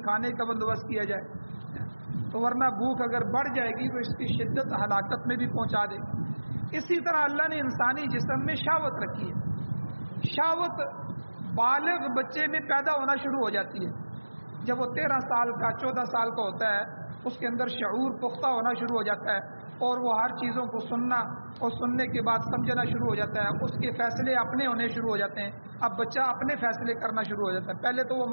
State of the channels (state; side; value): inverted; both; correlation -1.00